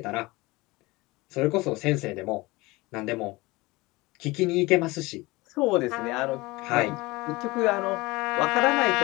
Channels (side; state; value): right; quieter; 22.1 dB